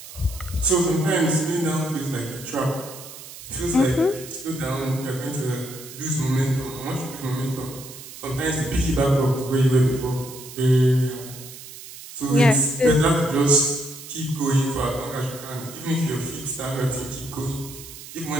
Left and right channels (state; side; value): noise; right; hiss, 15 dB below the sound